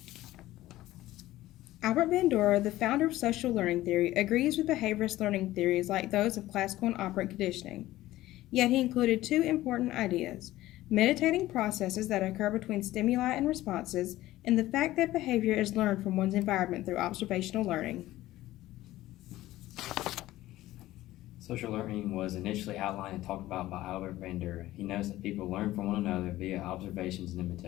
Albert Bandura, the founder of social learning theory, agrees with behaviorist learning theories like those of classical and operant conditioning. Yet he included two important ideas: meditating processes that occur between stimuli and responses, and the fact that behavior is learned from one's environment through observational learning. Social learning was initially outlined and talked about by Albert Bandura. He notes that people learn from one another via observations and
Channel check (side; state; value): right; quieter; 15.9 dB